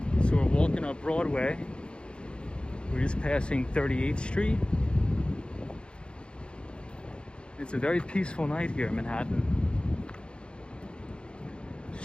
So we're walking up Broadway. We're just passing 38th Street. It's a very peaceful night here in Manhattan. The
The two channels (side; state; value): right; late; 0.055 ms